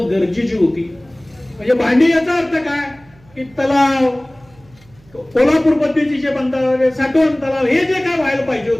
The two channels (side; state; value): right; noise; hum, 28 dB below the sound